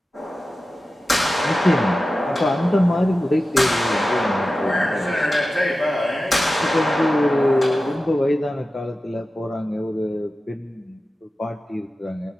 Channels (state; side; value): normal; both; correlation 0.94